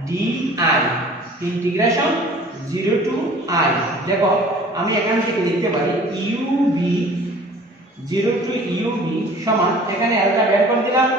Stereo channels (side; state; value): both; normal; correlation 0.48